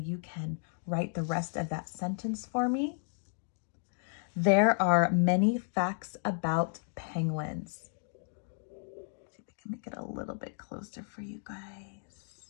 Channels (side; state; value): right; silent; 56 dB below the other